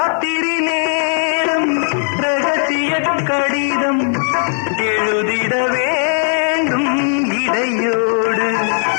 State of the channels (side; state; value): right; silent; digital silence